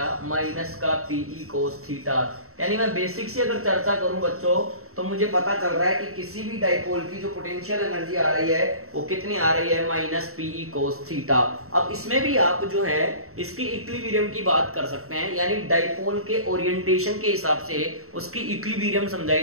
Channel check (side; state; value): left; late; 0.63 ms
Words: माइनस का पीई कोस थीटा। यानी मैं बेसिक से अगर चर्चा करूं बच्चों, तो मुझे पता चल रहा है कि किसी भी डाइपोल की जो पोटेंशियल एनर्जी आ रही है वो कितनी आ रही है, माइनस पीई कोस थीटा। अब इसमें भी आप जो है इसकी इक्विलिब्रियम की बात कर सकते हैं, यानी डाइपोल के ओरिएंटेशन के हिसाब से उसकी इक्विलिब्रियम